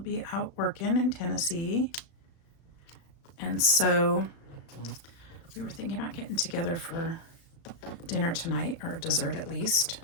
be out working in Tennessee. And so we were thinking about getting together for dinner tonight, or dessert at least,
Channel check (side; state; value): right; late; 35 ms